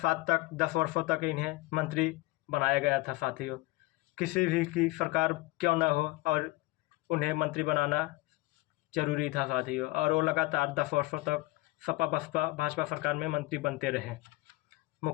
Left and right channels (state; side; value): quieter; right; 20.8 dB